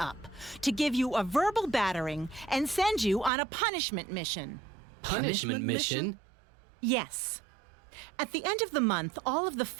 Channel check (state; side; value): drops out; left; at 3.3 s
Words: to give you a verbal battering and send you on a punishment mission. Punishment mission? Yes. At the end of the month, all of the